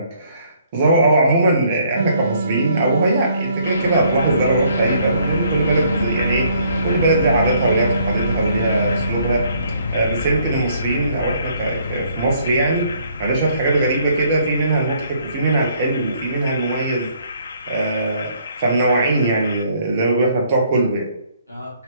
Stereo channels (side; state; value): both; inverted; correlation -0.65